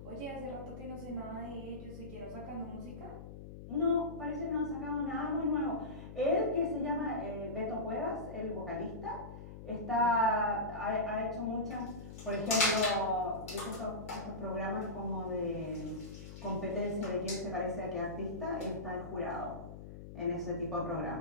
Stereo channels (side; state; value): left; noise; hum, 12 dB below the sound